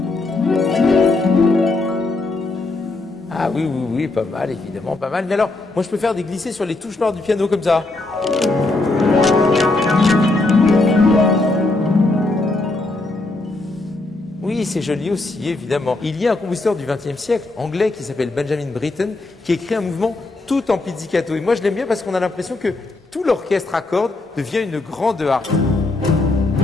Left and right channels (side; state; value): right; quieter; 3.1 dB